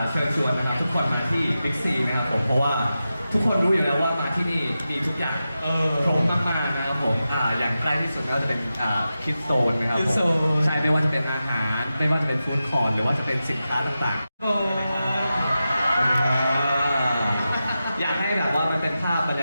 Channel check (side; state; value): both; inverted; correlation -0.92